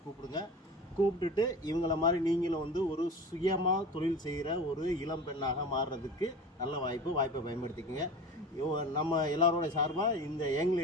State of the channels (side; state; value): both; normal; correlation 0.34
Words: கூப்பிடுங்க. கூப்பிட்டுட்டு இவங்கள மாதிரி நீங்களும் வந்து ஒரு சுயமாக தொழில் செய்கிற ஒரு இளம் பெண்ணாக மாறுறதுக்கு நல்ல வாய்ப்பை பயன்படுத்திக்கோங்க. நம்ம எல்லாரோட சார்பாக இந்த யங்